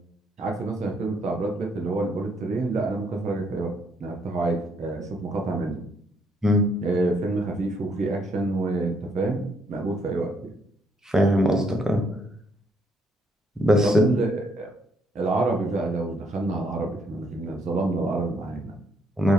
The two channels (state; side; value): normal; both; correlation 0.71